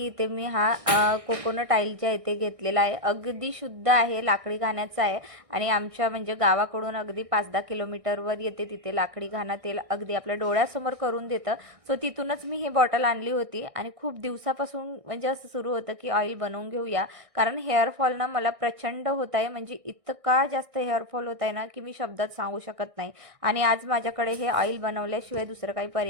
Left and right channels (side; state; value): left; late; 1.6 ms